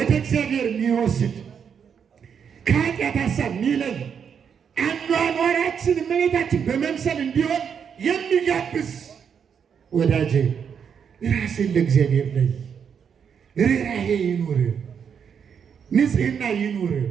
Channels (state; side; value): quieter; left; 7.3 dB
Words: እግዚአብሔር የሚወስድ፣ ከኃጢአት ሀሳብ የሚለይ፣ አኗኗራችን እመቤታችን በመምሰል እንዲሆን የሚጋብዝ። ወዳጄ ራስን ለእግዚአብሔር ለይ። ርኅራኄ ይኑር፣ ንጽሕና ይኑር፣